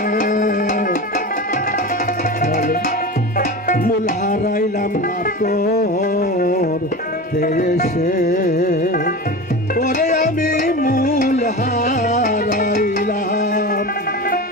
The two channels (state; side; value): normal; both; correlation 0.28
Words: মূল হারাইলাম না তোর দেশে, পরে আমি মূল হারাইলাম